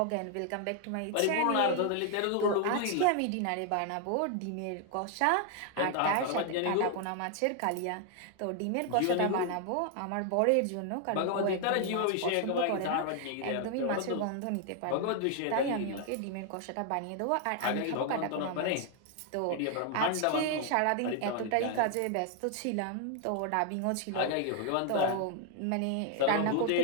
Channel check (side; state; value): both; different; correlation 0.00